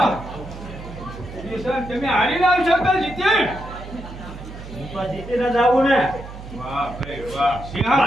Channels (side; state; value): right; noise; hum, 13 dB below the sound